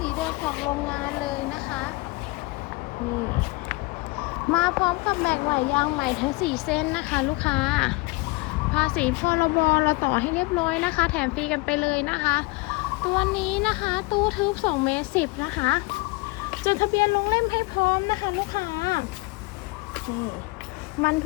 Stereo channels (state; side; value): quieter; right; 24.6 dB